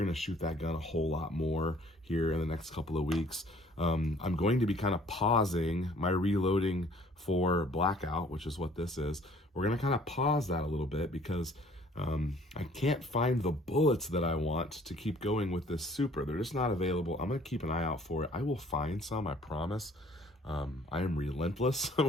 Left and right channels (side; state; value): both; normal; correlation 0.56